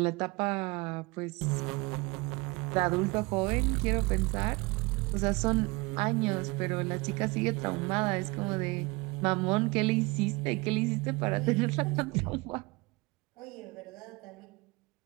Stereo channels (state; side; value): quieter; left; 25.3 dB